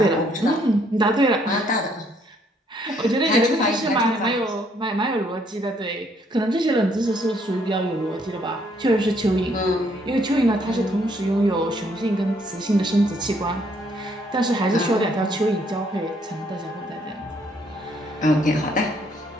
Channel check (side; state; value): both; normal; correlation 0.68